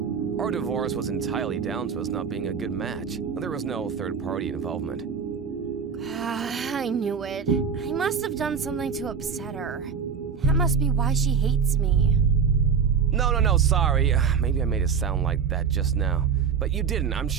Our divorce was entirely down to us not being a good match. There was no third-party involvement. I knew it. I must have done something to upset her. That must be why she hates me. No, sorry. Maybe I made it sound like that just now. But you didn't, I'm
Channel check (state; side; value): quieter; left; 6.4 dB